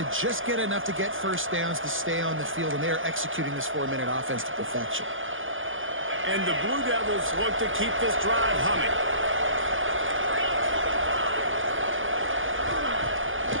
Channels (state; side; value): late; left; 0.58 ms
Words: just get enough to get first downs to stay on the field, and they are executing this 4-minute offense to perfection. And the Blue Devils look to keep this drive humming.